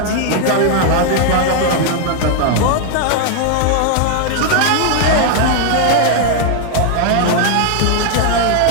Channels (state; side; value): different; both; correlation 0.00